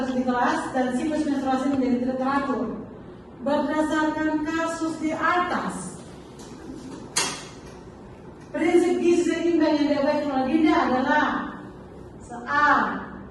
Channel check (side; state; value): both; identical; correlation 1.00